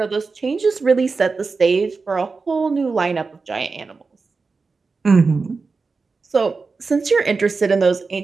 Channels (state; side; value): quieter; left; 4.4 dB